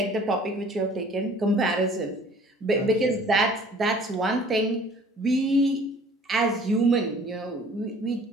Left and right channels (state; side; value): normal; both; correlation 0.51